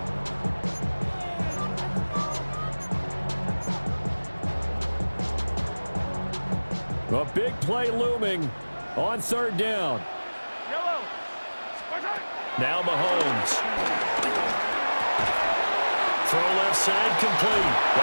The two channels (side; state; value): both; inverted; correlation -1.00